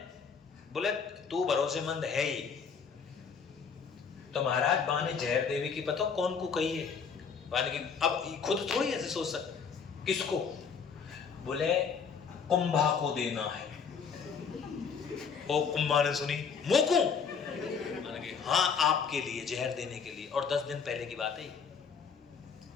बोले तू भरोसेमंद है ही। तो महाराज बाने जहर देवी की पता कौन को कही है? बाने की अब खुद थोड़ी ऐसे सोच सकते। किसको? बोले कुंभा को देना है। ओ कुंभा ने सुनी मोकू, हाँ आपके लिए जहर देने के लिए, और 10 दिन पहले की बात है।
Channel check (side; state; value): right; quieter; 6.1 dB